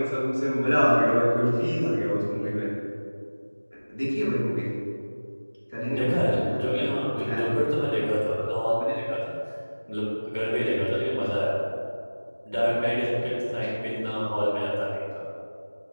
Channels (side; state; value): both; inverted; correlation -1.00